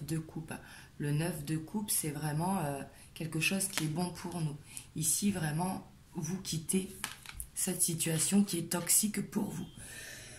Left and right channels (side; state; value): both; identical; correlation 1.00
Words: de coupe. Le 9 de coupe, c'est vraiment quelque chose qui est bon pour nous. Ici, vraiment, vous quittez cette situation qui est toxique pour vous.